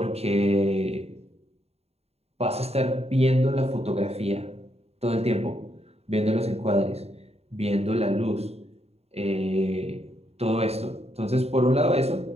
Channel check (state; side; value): late; left; 0.30 ms